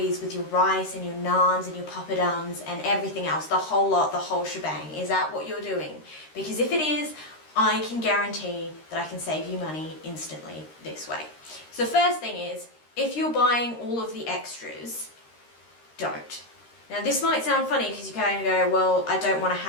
with your rice and your naans and your papadums and everything else, the whole lot, the whole shebang? Is that what you're doing? Because if it is, I can guarantee that I can save you money instantly this way. So the first thing is, if you're buying all of the extras, don't. Now this might sound funny because you kind of go, well, I don't want to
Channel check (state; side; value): late; right; 13 ms